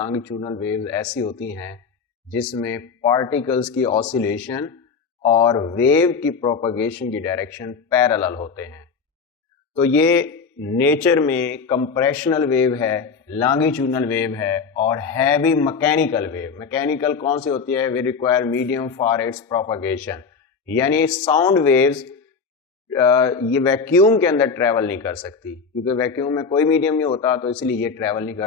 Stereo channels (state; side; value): quieter; right; 5.3 dB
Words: वेव्स ऐसी होती हैं जिसमें पार्टिकल्स की ऑसिलेशन और वेव की प्रोपगेशन की डायरेक्शन पैरेलल होते हैं। तो ये नेचर में कंप्रेशनल वेव है, लॉन्गिट्यूडनल वेव है और है भी मैकेनिकल वेव। मैकेनिकल कौन सी होती है? We require medium for its propagation, यानी साउंड वेव्स ये वैक्यूम के अंदर ट्रेवल नहीं कर सकती, क्योंकि वैक्यूम में कोई मीडियम नहीं होता, तो इसलिए ये ट्रेवल नहीं